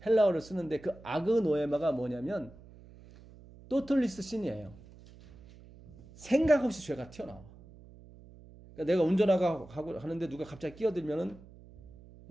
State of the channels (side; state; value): right; noise; hum, 21 dB below the sound